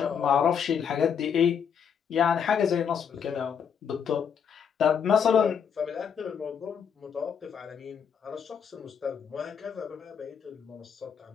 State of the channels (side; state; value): right; quieter; 7.4 dB